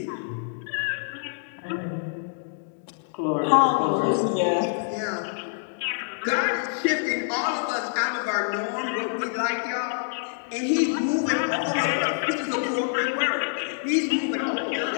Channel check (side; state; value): right; silent; digital silence